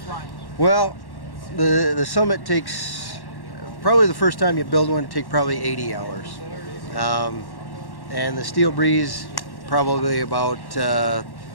Well, the Summit takes. Probably the first time you build one, it takes probably 80 hours. And the Steel Breeze, probably about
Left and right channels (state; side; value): late; right; 1.1 ms